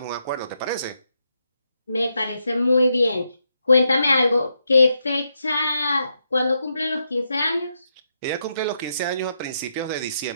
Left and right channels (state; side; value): inverted; both; correlation -0.82